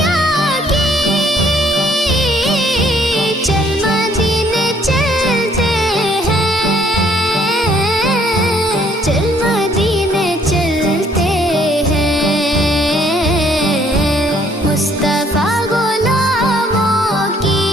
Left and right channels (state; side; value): normal; both; correlation 0.64